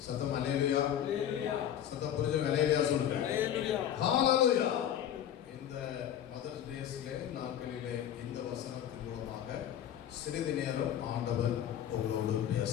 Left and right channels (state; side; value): quieter; right; 10.4 dB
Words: சத்தம் அல்லேலூயா. சத்தம் புரிஞ்சு அல்லேலூயா சொல்லுங்க. ஹalleluya. இந்த மதர்ஸ் டேஸ்ல நாட்களிலே இந்த வசனத்தின் மூலமாக சிறிது நேரம் ஆண்டவர் உங்களோடு